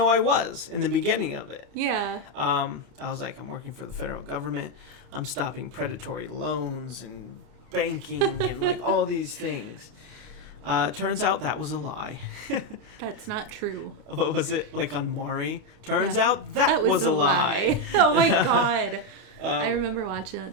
I was in the beginning of it. Yeah. I was like, I'm working for the federal government. I'm stopping predatory loans and banking and like all these things. Turns out that was a lie. That's not true. What was it? Like on Maury? Turns out that was a lie. Oh my God. I remember watching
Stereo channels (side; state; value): left; late; 30 ms